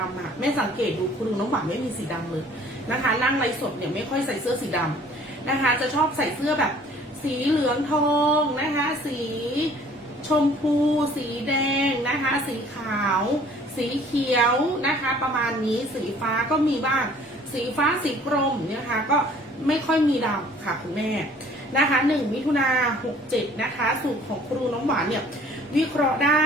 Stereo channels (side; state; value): both; normal; correlation 0.54